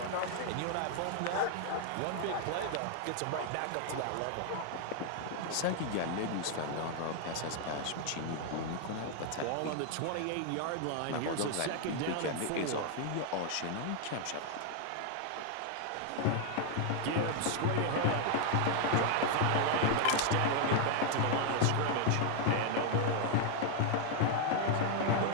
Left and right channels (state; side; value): different; both; correlation 0.00